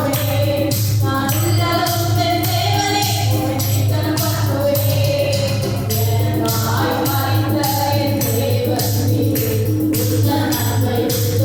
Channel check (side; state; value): both; identical; correlation 1.00